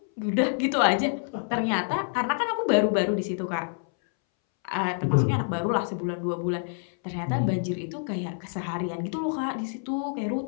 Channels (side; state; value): right; silent; 60 dB below the other